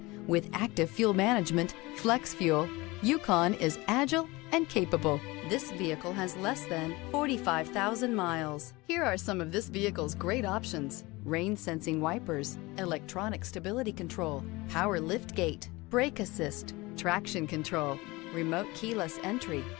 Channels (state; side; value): quieter; right; 22.5 dB